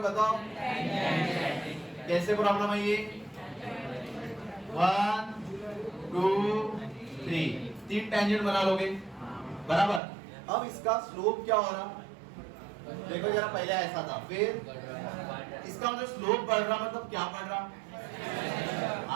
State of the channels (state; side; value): drops out; left; at 10.0 s